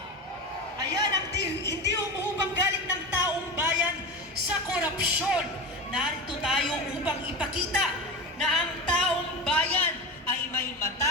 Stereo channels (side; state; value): both; normal; correlation 0.25